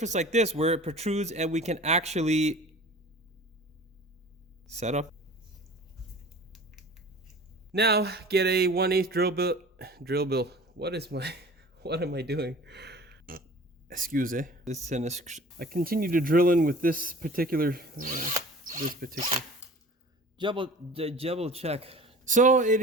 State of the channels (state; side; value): normal; both; correlation 0.43